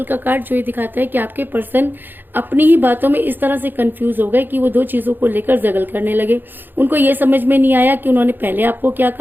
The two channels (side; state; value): left; late; 0.093 ms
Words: का कार्ड जो ये दिखाता है कि आपके पर्सन अपनी ही बातों में इस तरह से कंफ्यूज हो गए कि वो दो चीजों को लेकर जगल करने लगे। उनको ये समझ में नहीं आया कि उन्होंने पहले आपको क्या